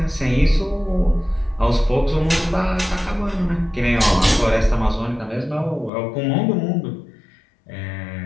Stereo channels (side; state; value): right; drops out; at 5.9 s